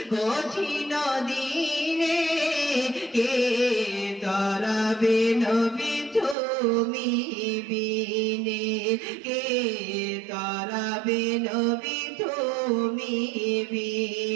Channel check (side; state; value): left; drops out; at 6.4 s